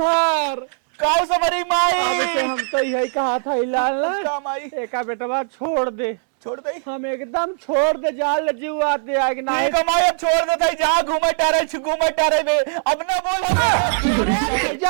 काऊ सबरी माई, अब से हम तो यही कहा था हिलाल का माई एका बेटवा छोड़ दे, छोड़ दे। हम एकदम छोड़ दे, जाल जीव आते आग ना नहीं कमाई अब छोड़ देता है, जहाँ घूमे टारे में अब ना बोल।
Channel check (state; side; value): silent; left; digital silence